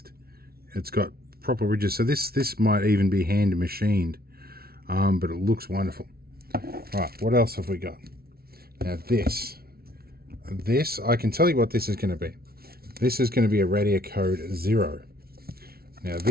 It's got proper ridges, so this might even be hand machined, but it looks wonderful. Right, what else have we got? Now this, I can tell you what this is going to be. This is going to be a Radio Code 0. Now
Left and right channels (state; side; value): late; left; 0.44 ms